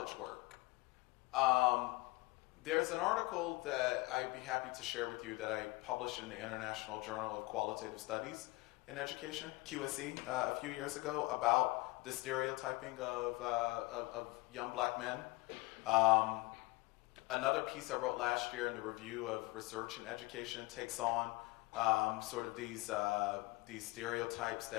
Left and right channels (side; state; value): right; quieter; 23.2 dB